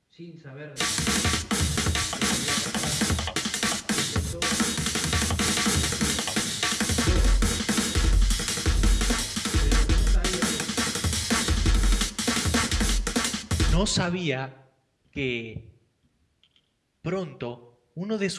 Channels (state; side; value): identical; both; correlation 1.00